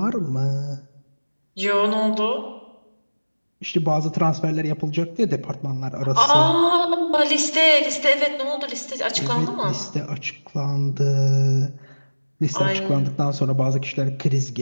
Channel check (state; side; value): inverted; both; correlation -1.00